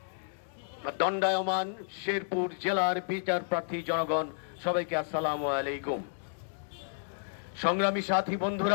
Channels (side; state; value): right; silent; digital silence